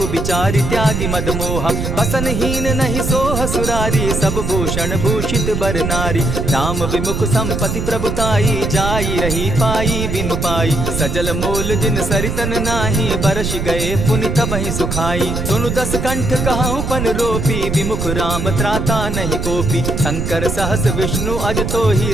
बिचारी त्यागी मद मोहा। बसन हीन नहीं सोह सुरारी, सब भूषण भूषित बर नारी। राम विमुख संपति प्रभुताई, जाई रही पाई बिनु पाई। सजल मोल जिन सरितन नाही, बरस गए पुनि तबहि सुखाई। सुनु दस कंठ कहूँ पन रोपी, विमुख राम त्राता नहीं कोपी। शंकर सहस विष्णु अज तोहि,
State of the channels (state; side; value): noise; right; rumble, 2 dB below the sound